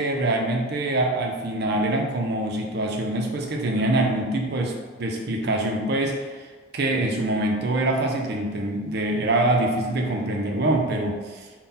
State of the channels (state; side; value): normal; both; correlation 0.28